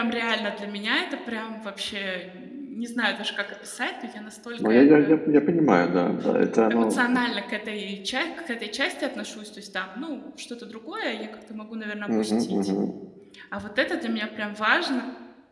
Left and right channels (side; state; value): both; identical; correlation 1.00